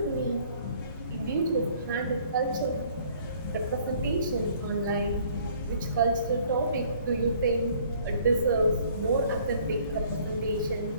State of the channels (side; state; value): both; inverted; correlation -0.58